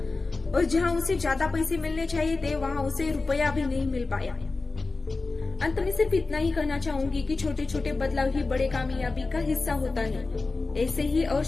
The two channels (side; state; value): right; quieter; 3.7 dB